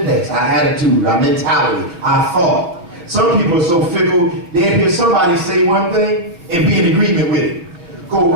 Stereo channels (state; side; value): late; left; 6.0 ms